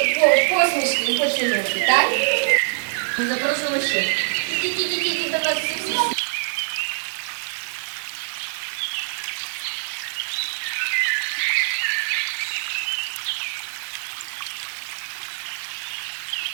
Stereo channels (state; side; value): silent; left; digital silence